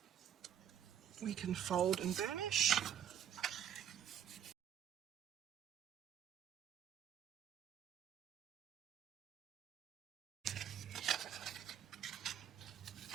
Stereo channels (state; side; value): quieter; left; 9.7 dB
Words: we can fold and burnish.